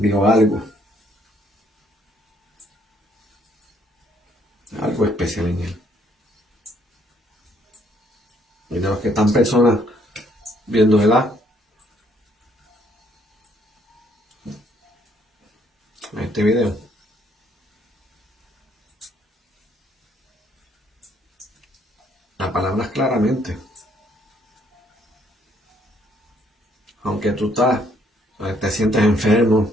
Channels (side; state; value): both; normal; correlation 0.67